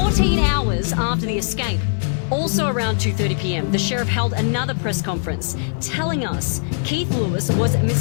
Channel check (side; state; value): right; silent; 65 dB below the other